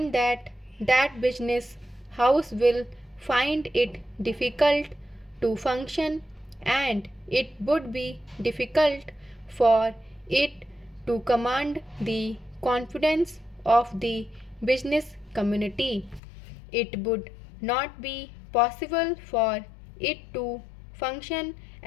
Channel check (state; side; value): drops out; right; at 16.2 s